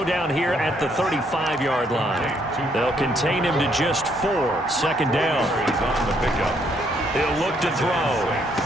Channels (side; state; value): both; normal; correlation 0.70